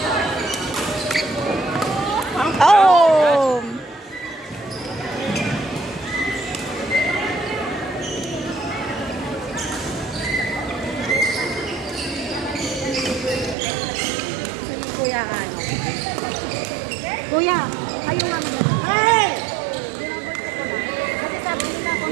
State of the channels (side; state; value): left; drops out; at 13.6 s